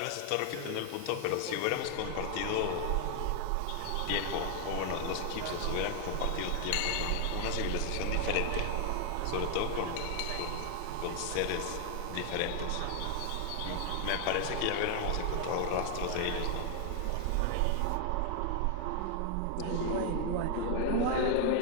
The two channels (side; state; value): both; different; correlation 0.00